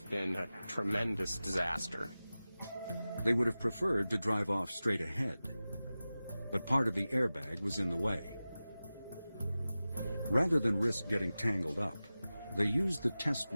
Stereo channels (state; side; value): inverted; both; correlation -0.96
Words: been a tremendous disaster. They would have preferred to drive off straight ahead, but part of the airbag was in the way. Rather than risk getting tangled up, they used the test